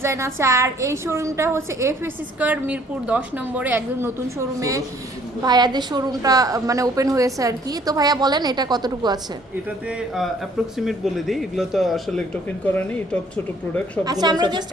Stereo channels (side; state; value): both; normal; correlation 0.60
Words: আছে। আর এই শোরুমটা হচ্ছে এফএস স্কয়ার মিরপুর 10 নম্বরে, একদম নতুন শোরুমে ভাইয়াদের শোরুমটা মানে ওপেন হয়েছে আর কি। তো ভাইয়া বলেন এটা কতটুকু আছে? এটাতে অ্যাপ্রক্সিমেট বলে দিই, এগুলো তো আসলে টোকেন করা নেই, টপ ছোট প্রোডাক্ট সবগুলো। আচ্ছা, আমরা জাস্ট